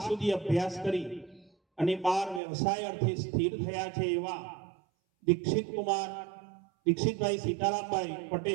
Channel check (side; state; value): left; drops out; at 2.4 s